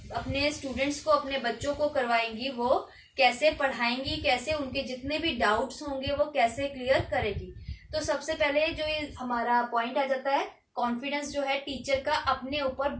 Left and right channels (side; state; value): both; identical; correlation 1.00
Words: अपने स्टूडेंट्स को, अपने बच्चों को करवाएंगी वो कैसे पढ़ाएंगी, कैसे उनके जितने भी डाउट्स होंगे वो कैसे क्लियर करेगी। तो सबसे पहले जो ये हमारा पॉइंट आ जाता है, कॉन्फिडेंस जो है टीचर का अपने ऊपर